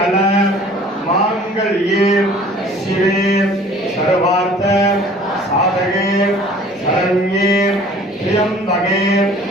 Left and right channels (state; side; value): normal; both; correlation 0.50